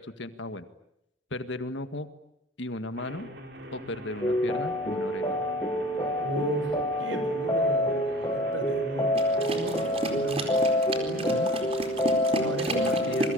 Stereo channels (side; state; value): both; normal; correlation 0.42